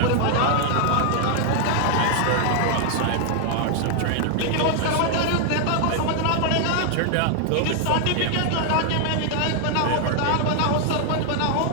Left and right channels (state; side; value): different; both; correlation 0.00